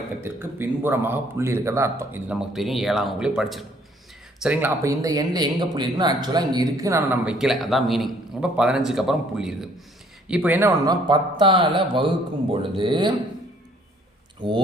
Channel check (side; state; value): both; normal; correlation 0.61